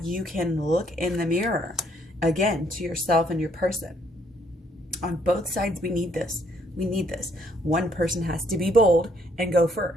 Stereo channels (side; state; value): both; normal; correlation 0.68